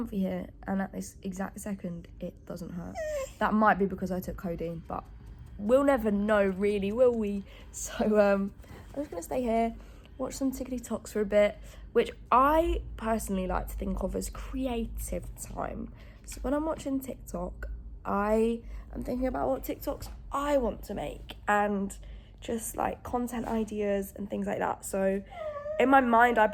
here, and at this exact second, it doesn't hurt. That might be because I took codeine, but we'll never know really, will we? So I'm just gonna stay here, watch some TikToks for a bit, which I personally like to think of as creative time. So when I'm watching TikTok, I am thinking about what TikToks I want to make and just like content ideas and things like that. So in my mind, I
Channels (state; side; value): identical; both; correlation 1.00